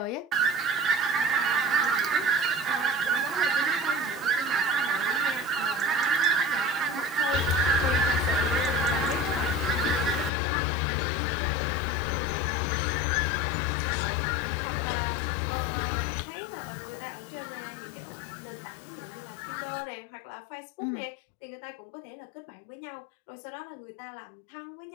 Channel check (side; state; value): right; drops out; at 10.3 s